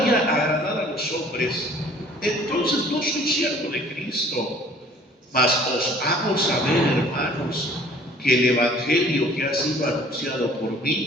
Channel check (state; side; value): normal; both; correlation 0.52